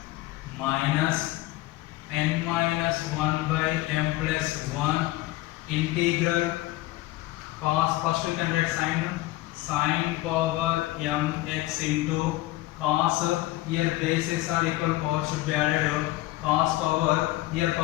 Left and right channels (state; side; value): quieter; right; 17.8 dB